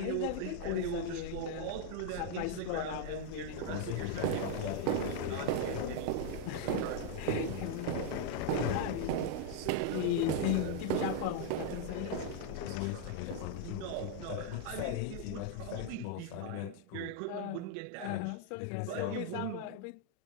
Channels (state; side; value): different; both; correlation 0.00